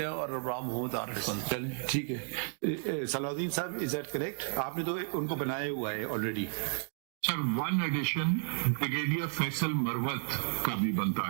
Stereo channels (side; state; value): left; silent; 56 dB below the other